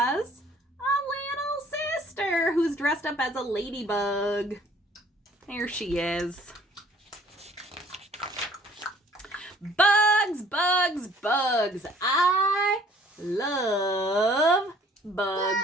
a little sister who's dressed up as a ladybug. There she is. Bugs, bugs, bugs. I love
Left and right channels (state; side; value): normal; both; correlation 0.57